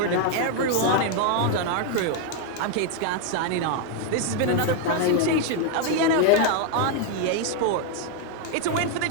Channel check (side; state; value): both; different; correlation 0.01